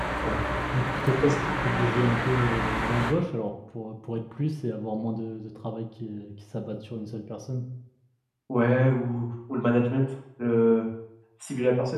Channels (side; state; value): both; identical; correlation 1.00